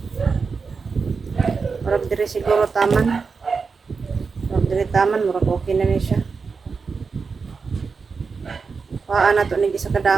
Murag diri siguro taman. Murag diri taman murag okay na ni siya. Paa na to ni sa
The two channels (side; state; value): left; quieter; 5.0 dB